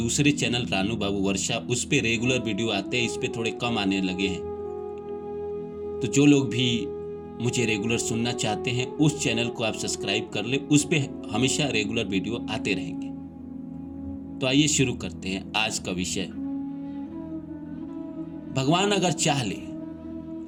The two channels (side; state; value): both; identical; correlation 1.00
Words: चैनल रानू बाबू वर्षा, उस पे रेगुलर वीडियो आते हैं, इस पे थोड़े कम आने लगे हैं। तो जो लोग भी मुझे रेगुलर सुनना चाहते हैं उस चैनल को आप सब्सक्राइब कर ले, उस पे हमेशा रेगुलर वीडियो आते रहेंगे। तो आइए शुरू करते हैं आज का विषय। भगवान अगर चाह ले,